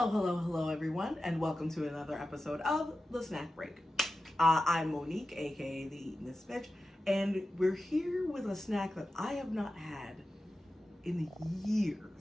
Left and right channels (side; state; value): both; normal; correlation 0.93